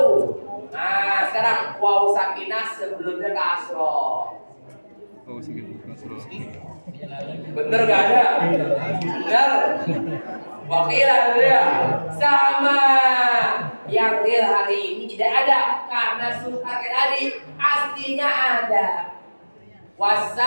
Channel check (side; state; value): both; inverted; correlation -1.00